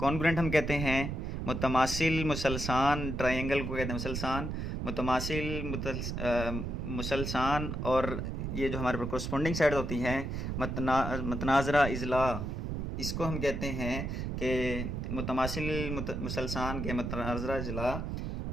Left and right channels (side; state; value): right; noise; rumble, 3 dB below the sound